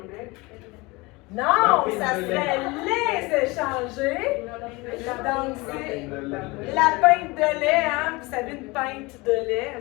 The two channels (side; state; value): right; quieter; 23.9 dB